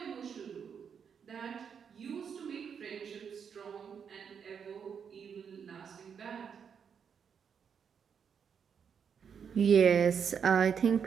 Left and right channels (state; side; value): quieter; left; 7.1 dB